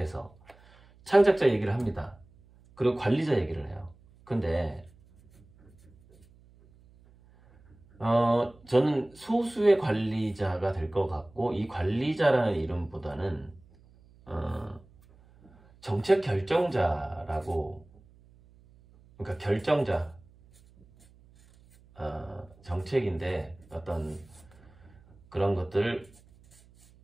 창작자 얘기를 합니다. 그리고 관리자 얘기를 해요. 근데 저는 소수의 관리자가 될 것 같고, 이 관리자라는 이름보다는 정책 결정자라고, 그러니까 결정자, 정책인데 어떤 그런 것들,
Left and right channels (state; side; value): noise; right; hum, 27 dB below the sound